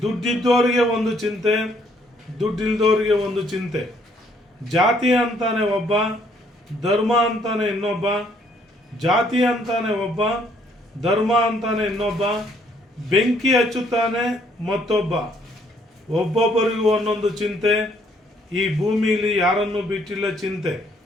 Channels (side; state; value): both; normal; correlation 0.66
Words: ದುಡ್ಡಿದ್ದವರಿಗೆ ಒಂದು ಚಿಂತೆ, ದುಡ್ಡಿಲ್ದವರಿಗೆ ಒಂದು ಚಿಂತೆ. ಜಾತಿ ಅಂತಾನೆ ಒಬ್ಬ, ಧರ್ಮ ಅಂತಾನೆ ಇನ್ನೊಬ್ಬ. ಜಾತಿ ಅಂತಾನೆ ಒಬ್ಬ, ಧರ್ಮ ಅಂತಾನೆ ಇನ್ನೊಬ್ಬ. ಬೆಂಕಿ ಹಚ್ಚುತ್ತಾನೆ ಮತ್ತೊಬ್ಬ. ಒಬ್ಬೊಬ್ಬರಿಗೂ ಒಂದೊಂದು ಚಿಂತೆ, ಈ ಭೂಮಿಲಿ ಯಾರನ್ನು ಬಿಟ್ಟಿಲ್ಲ ಚಿಂತೆ.